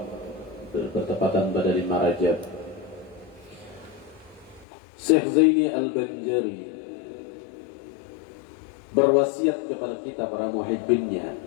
bertepatan pada 5 Rajab. Syekh Zaini Al-Banjari berwasiat kepada kita para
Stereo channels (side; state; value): right; drops out; at 4.7 s